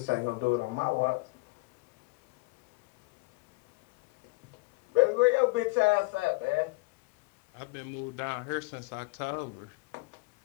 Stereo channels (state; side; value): quieter; right; 24.7 dB